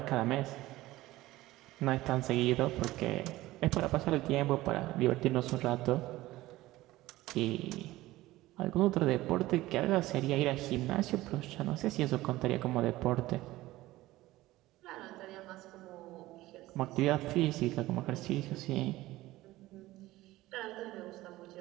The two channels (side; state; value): left; quieter; 17.4 dB